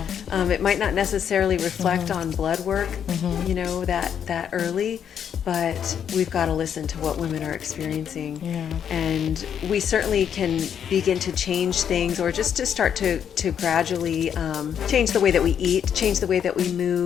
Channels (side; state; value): right; quieter; 8.5 dB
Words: It might not necessarily reflect on blood work, that early, but we've got to listen to what women are experiencing. And we certainly can begin to change things, or just to start to gradually change the way that we eat, change the way that we